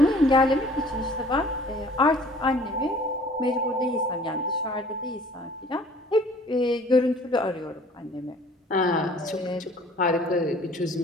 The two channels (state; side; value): normal; both; correlation 0.52